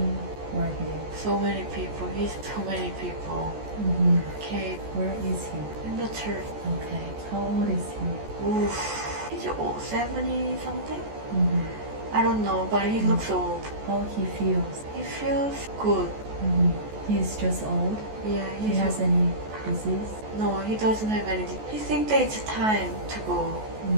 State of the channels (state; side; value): late; left; 14 ms